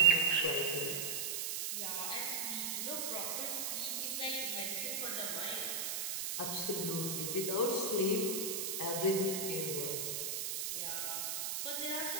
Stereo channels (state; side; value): noise; right; hiss, 1 dB below the sound